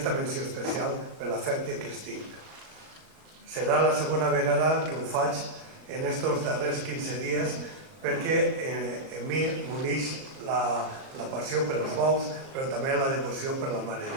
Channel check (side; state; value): left; late; 38 ms